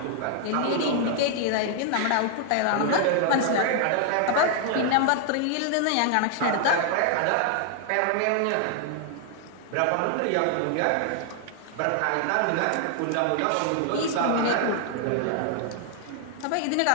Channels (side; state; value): both; different; correlation 0.00